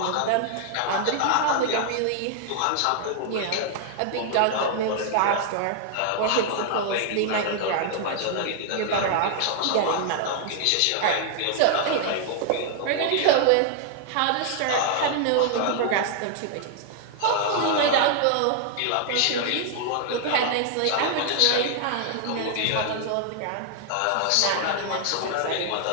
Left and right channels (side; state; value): both; different; correlation 0.00